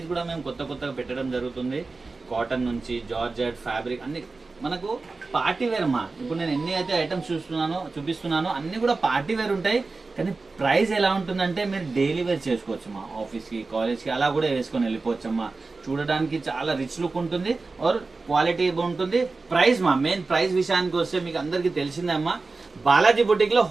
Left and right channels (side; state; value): left; quieter; 3.8 dB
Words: కూడా మేము కొత్తగా పెట్టడం జరుగుతుంది. కాటన్ నుంచి జార్జెట్ ఫ్యాబ్రిక్ అన్ని మనకు పార్టీ వేర్ అమ్మా. ఇప్పుడు నేను ఎన్ని అయితే ఐటమ్స్ చూపిస్తున్నానో అన్ని కూడా పార్టీ వేర్ ఉంటాయి. కానీ ప్రైస్ ఎలా ఉంటుందంటే మీరు డైలీ వేర్ చేసుకోవచ్చమ్మా, ఆఫీస్కి కాలేజ్కి అలా కూడా వేసుకొని వెళ్ళిపోవచ్చమ్మా. చూడడానికి చాలా రిచ్ లుక్ ఉంటుంది, ఆర్ క్వాలిటీ ఉంటుంది. ప్రైస్ మెయిన్ ప్రైస్ విషయానికి వస్తే మీకు అందరికీ తెలిసిందే అమ్మా, బాలాజీ బుటిక్ లో